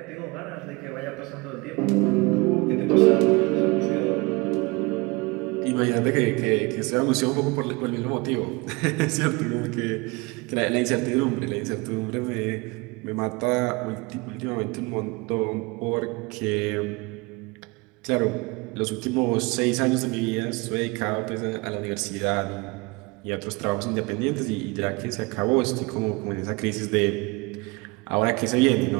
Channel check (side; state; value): left; quieter; 25.8 dB